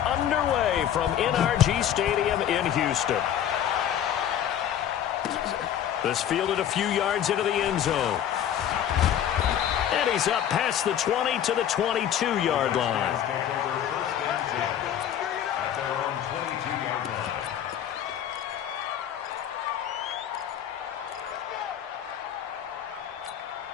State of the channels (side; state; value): right; quieter; 10.1 dB